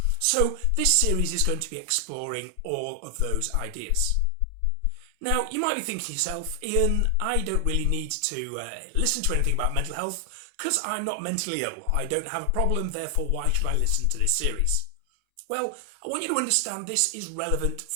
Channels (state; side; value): different; both; correlation 0.00